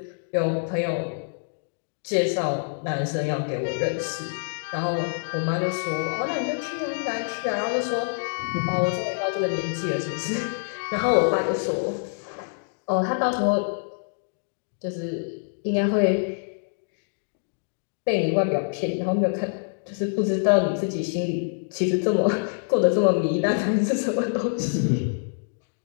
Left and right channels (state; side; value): silent; right; digital silence